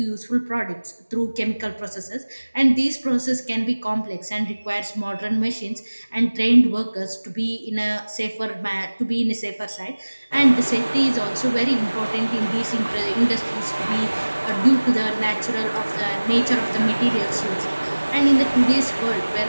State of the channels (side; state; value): both; inverted; correlation -1.00